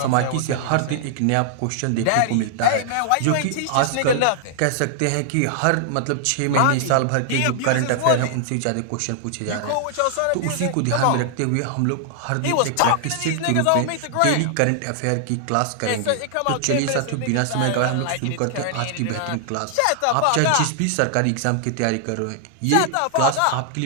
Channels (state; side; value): different; both; correlation 0.00